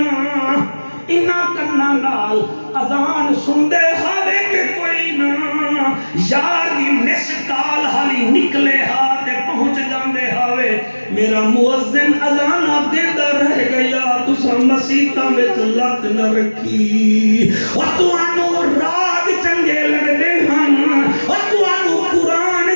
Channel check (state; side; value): inverted; both; correlation -1.00